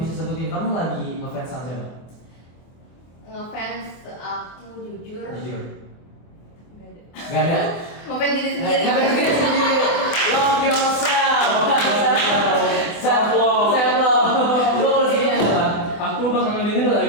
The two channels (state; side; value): late; right; 24 ms